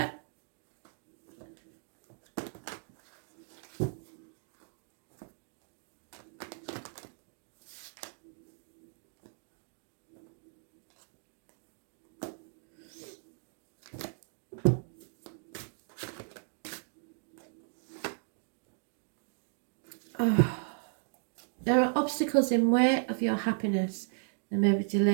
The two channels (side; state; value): left; silent; digital silence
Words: Oh. There are obstacles in way of your happiness. There may be